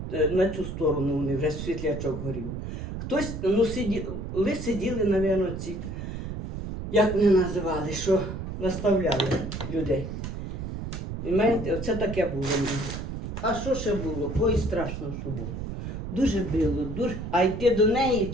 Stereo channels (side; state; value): right; noise; rumble, 6 dB below the sound